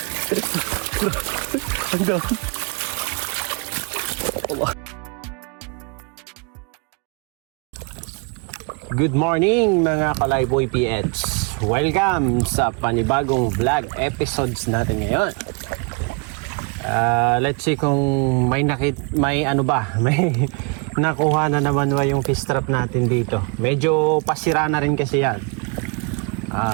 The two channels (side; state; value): left; quieter; 33.5 dB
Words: Ang dami. Good morning mga Kalayboy PH. Welcome sa panibagong vlog episodes natin ngayon. Let's see kung may nakuha na naman ba yung fish trap natin dito. Medyo pasira na rin kasi yan.